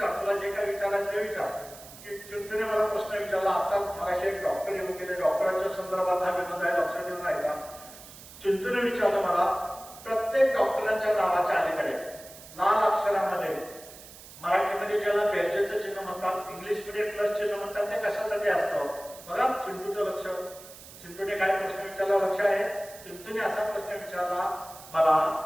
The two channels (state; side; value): noise; right; hiss, 17 dB below the sound